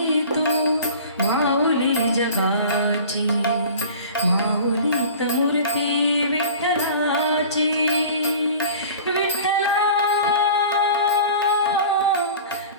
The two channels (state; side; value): inverted; both; correlation -0.41